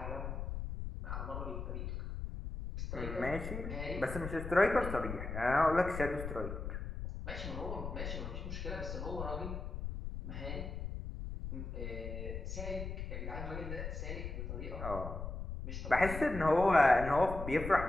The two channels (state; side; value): noise; left; rumble, 6 dB below the sound